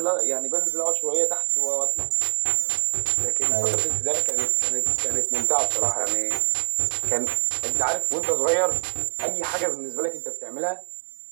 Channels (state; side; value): silent; left; 62 dB below the other